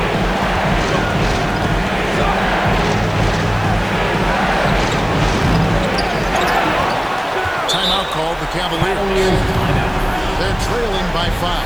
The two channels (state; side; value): noise; left; hiss, 27 dB below the sound